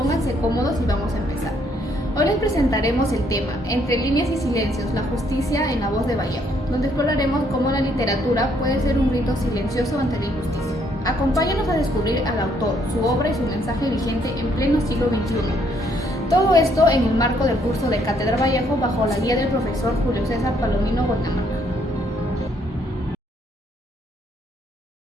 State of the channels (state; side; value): normal; both; correlation 0.69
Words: cómodos y vamos a empezar. Hoy les presentaremos el tema Entre líneas y silencios, la justicia en la voz de Vallejo, donde exploraremos cómo la literatura puede ser un grito silencioso ante la injusticia. Acompáñanos a descubrir al autor, su obra y su mensaje vigente en pleno siglo XXI. Todo esto en el marco del curso de Cátedra Vallejo bajo la guía del profesor Julio César Palomino Guaynamaca.